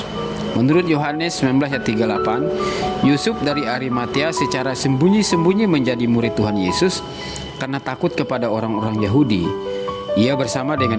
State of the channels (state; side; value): identical; both; correlation 1.00